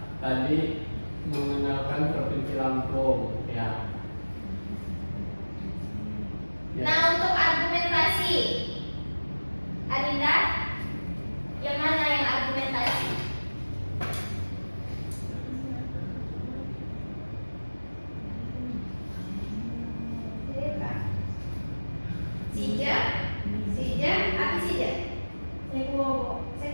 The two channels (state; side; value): inverted; both; correlation -1.00